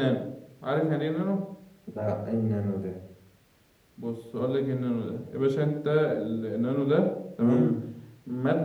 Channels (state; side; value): identical; both; correlation 1.00